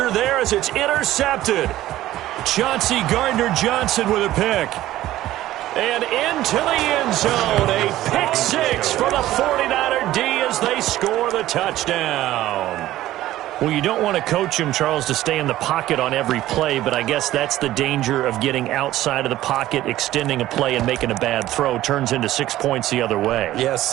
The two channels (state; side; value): quieter; left; 14.7 dB